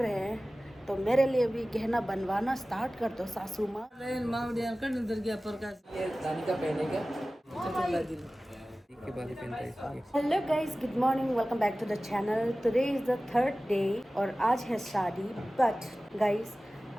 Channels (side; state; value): both; normal; correlation 0.97